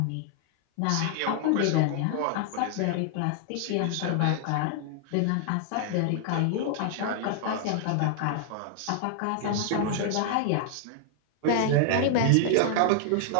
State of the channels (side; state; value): both; different; correlation 0.00